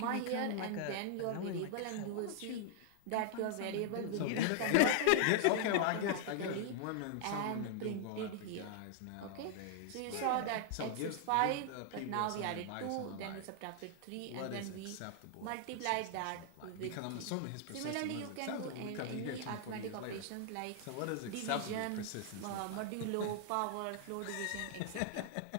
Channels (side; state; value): both; different; correlation 0.00